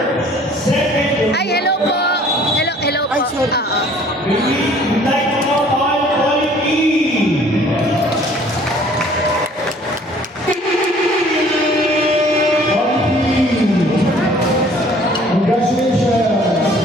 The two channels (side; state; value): both; normal; correlation 0.54